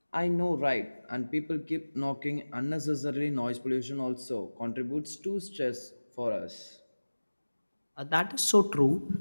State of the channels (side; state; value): both; inverted; correlation -1.00